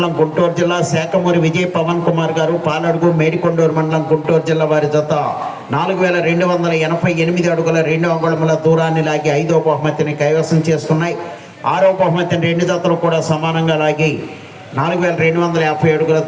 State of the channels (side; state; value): both; identical; correlation 1.00